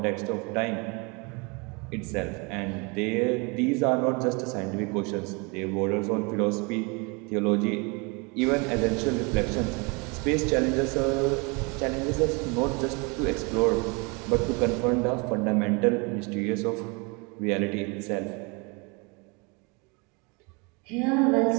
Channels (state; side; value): quieter; left; 30.2 dB